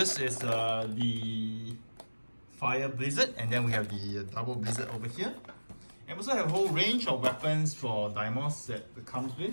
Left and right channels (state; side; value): inverted; both; correlation -1.00